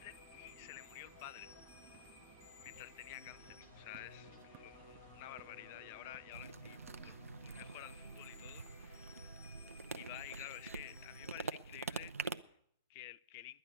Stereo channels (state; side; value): inverted; both; correlation -0.37